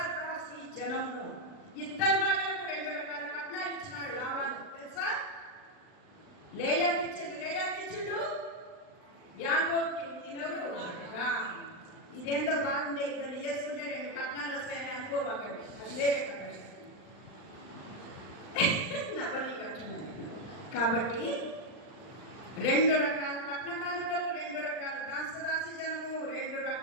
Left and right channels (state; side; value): late; right; 39 ms